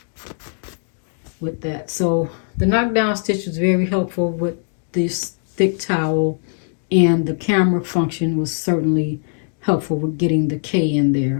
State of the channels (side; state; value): right; silent; digital silence